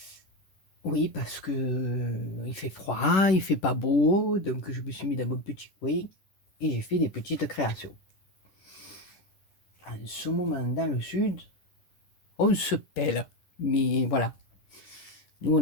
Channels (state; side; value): late; right; 11 ms